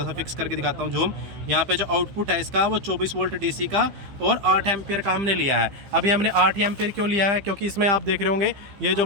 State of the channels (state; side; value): late; left; 15 ms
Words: सा फिक्स करके दिखाता हूँ जूम। यहाँ पे जो आउटपुट है इसका वो 24 वोल्ट डीसी का और 8 एम्पियर का हमने लिया है। अभी हमने 8 एम्पियर क्यों लिया है, क्योंकि इसमें आप देख रहे होंगे ये जो